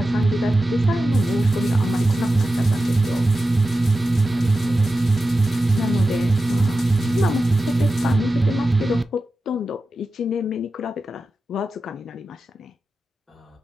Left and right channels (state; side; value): normal; both; correlation 0.93